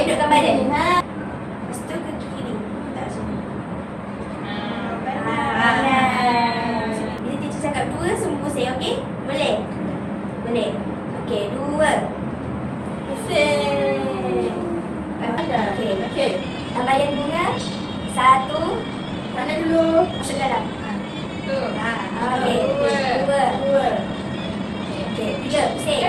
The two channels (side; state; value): both; identical; correlation 1.00